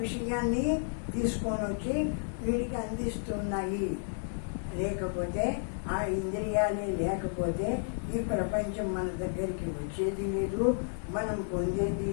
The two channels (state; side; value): silent; right; 56 dB below the other